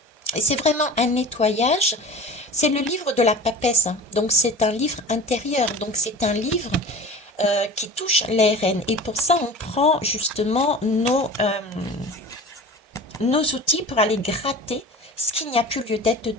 Et c'est vraiment un nettoyage C'est le livre de la papesse, hein. Donc c'est un livre intérieur, donc c'est un livre qui touche l'ARN. Et pour ça, on prend justement nos outils pour aller gratter ce qu'il n'y a plus lieu d'être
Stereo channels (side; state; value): both; normal; correlation 0.37